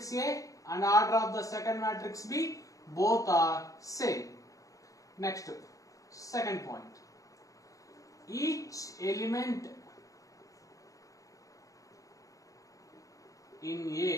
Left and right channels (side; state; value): right; late; 0.16 ms